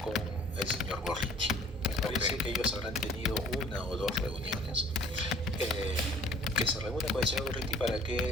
con el señor Gorriti. Me parece que ellos habrán tenido una o dos reuniones, que se reúne con el señor Gorriti para que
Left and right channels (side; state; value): both; normal; correlation 0.53